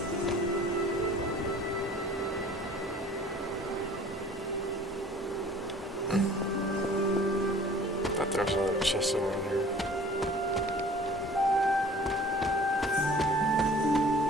I thought there was another chest over in here.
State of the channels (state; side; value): normal; both; correlation 0.49